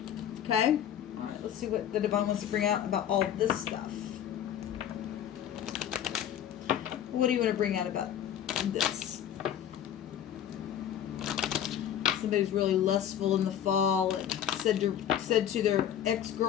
Okay? All right, let's see what the Divine wants to bring out about all this stuff. What do you want to bring out about this? Somebody's really lustful in the fall and said to their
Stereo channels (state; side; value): quieter; right; 10.0 dB